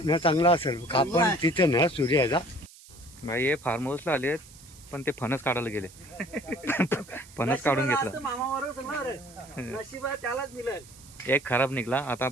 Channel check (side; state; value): right; noise; hiss, 21 dB below the sound